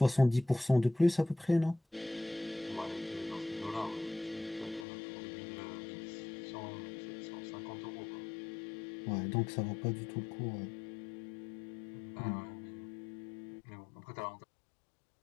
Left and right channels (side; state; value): right; drops out; at 4.9 s